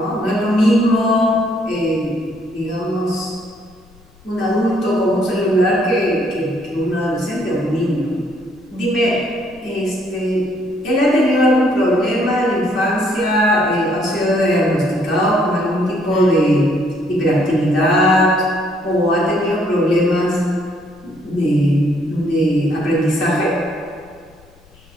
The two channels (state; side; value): noise; left; rumble, 28 dB below the sound